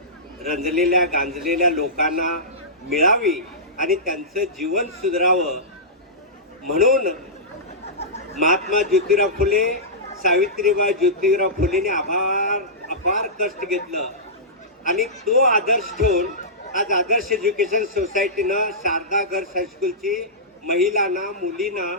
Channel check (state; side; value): normal; both; correlation -0.17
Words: रंजलेल्या गांजलेल्या लोकांना मिळावी आणि त्यांचं जीवन सुधारावं म्हणून महात्मा ज्योतिराव फुले सावित्रीबाई ज्योतिराव फुलेने अपार कष्ट घेतलं आणि तो आदर्श ठेवून आज आदर्श एज्युकेशन सोसायटीनं शारदा गर्ल्स हायस्कूलची महिलांना मुलींना